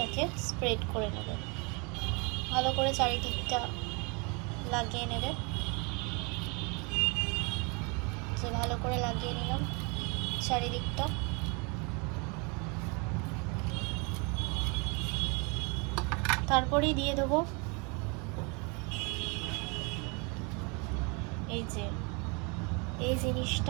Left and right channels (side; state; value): left; quieter; 31.2 dB